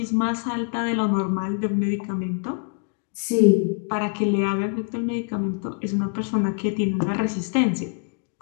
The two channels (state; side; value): quieter; right; 37.7 dB